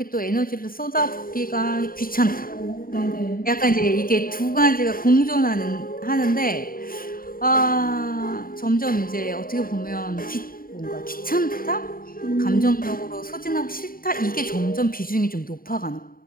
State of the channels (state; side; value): late; right; 0.42 ms